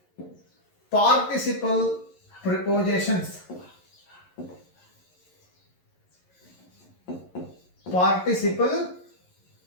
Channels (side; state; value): right; late; 11 ms